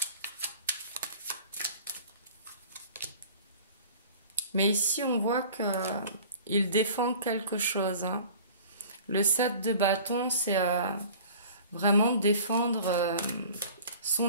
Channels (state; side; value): inverted; both; correlation -0.45